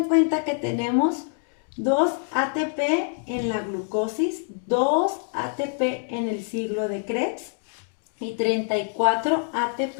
cuenta que tenemos 2 ATP en la glucosis, 2 ATP en el ciclo de Krebs y 34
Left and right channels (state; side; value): silent; right; 60 dB below the other